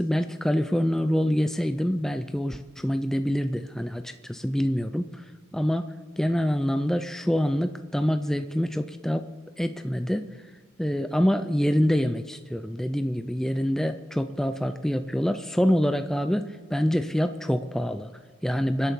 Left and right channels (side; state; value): both; normal; correlation 0.97